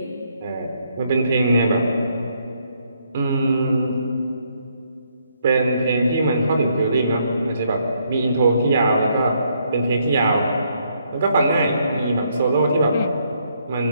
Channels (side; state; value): both; inverted; correlation -0.72